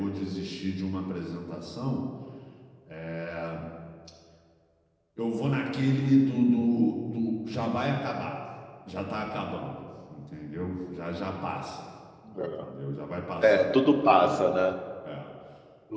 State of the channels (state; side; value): identical; both; correlation 1.00